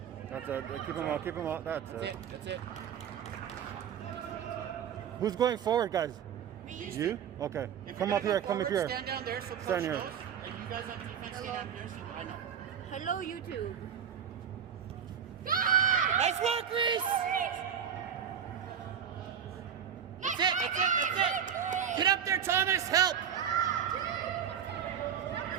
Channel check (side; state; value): left; quieter; 8.4 dB